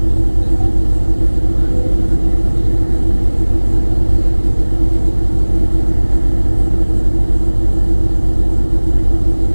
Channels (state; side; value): inverted; both; correlation -1.00